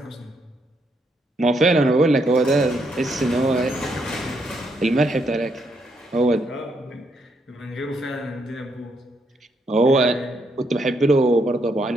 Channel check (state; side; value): normal; both; correlation 0.76